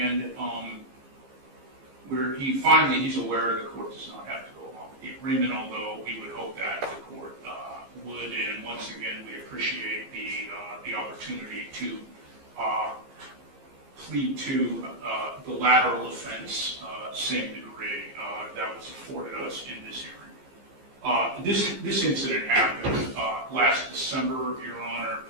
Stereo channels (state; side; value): late; left; 15 ms